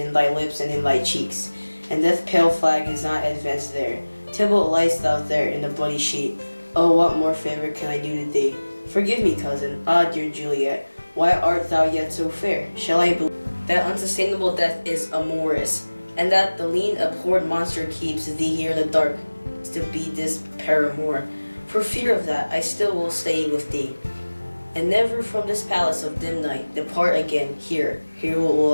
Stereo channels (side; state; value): both; inverted; correlation -1.00